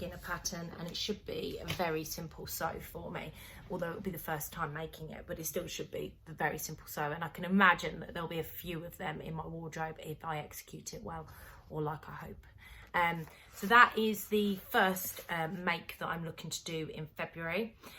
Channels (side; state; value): both; identical; correlation 1.00